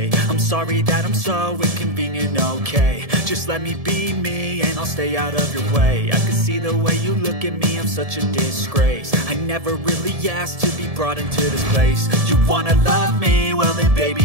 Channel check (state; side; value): late; left; 1.7 ms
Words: I'm sorry that I'm so inconvenient, okay. Just let me be me and I'll stay out of your way. I can see the way you look at me, I'm such a disgrace. I never really asked to be brought into this place. You wanna love me? Well then